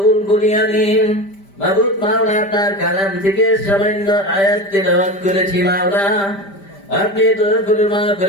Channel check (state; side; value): late; right; 5.1 ms